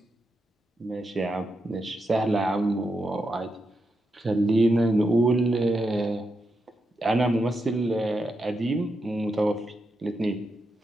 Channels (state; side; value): normal; both; correlation 0.85